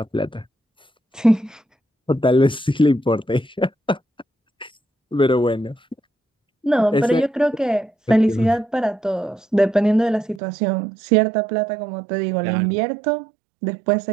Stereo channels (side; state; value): left; drops out; at 10.4 s